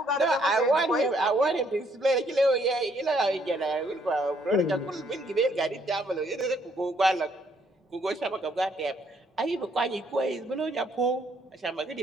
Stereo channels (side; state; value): both; normal; correlation 0.68